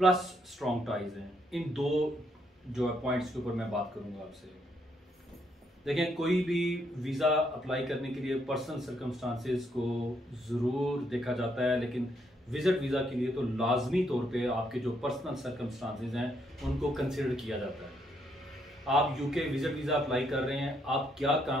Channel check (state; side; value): normal; both; correlation 0.74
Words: स्ट्रॉन्ग टाइज हैं, इन दो जो पॉइंट्स के ऊपर मैं बात करूंगा आपसे। देखें, कोई भी वीज़ा अप्लाई करने के लिए पर्सनल सर्कमस्टांसिस को ज़रूर देखा जाता है, लेकिन विजिट वीज़ा के लिए तो लाजमी तौर पे आपके जो पर्सनल सर्कमस्टांसिस हैं उनको कंसिडर किया जाता है। आप यूके विजिट वीज़ा अप्लाई कर रहे हैं, आप क्या